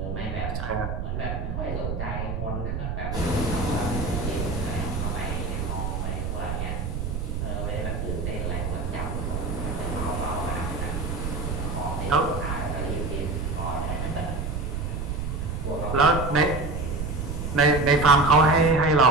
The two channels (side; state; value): right; noise; rumble, 3 dB below the sound